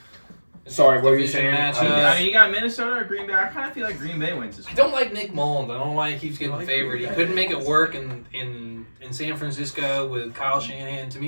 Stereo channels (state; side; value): inverted; both; correlation -1.00